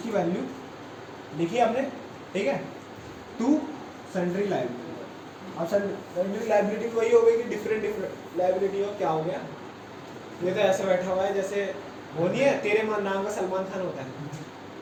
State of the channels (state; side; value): identical; both; correlation 1.00